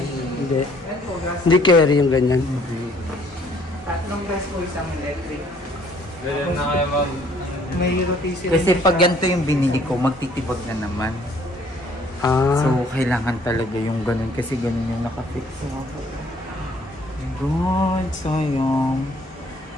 Hindi. Hindi carry yung ganyan. Tatlong gas po isang electric. Ganyan na kayo mag... May rotation. kasi pag ganito yung binili ko, magtitibag na naman. Ah. So, kailangan talaga yung ganun. Kasi ganun yung nakafix. God, sayang.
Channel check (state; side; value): normal; both; correlation 0.61